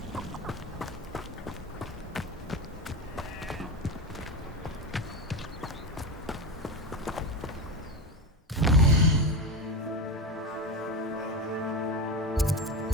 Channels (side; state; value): both; normal; correlation 0.19